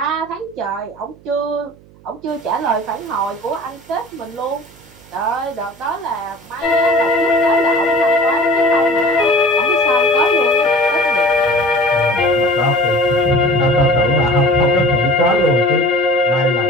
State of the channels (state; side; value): noise; right; hum, 25 dB below the sound